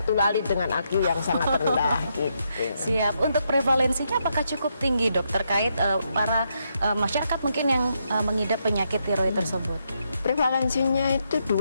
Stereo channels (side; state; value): both; inverted; correlation -0.79